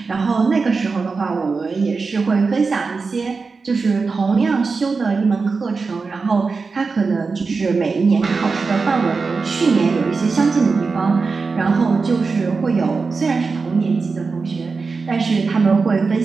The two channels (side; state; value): left; quieter; 4.5 dB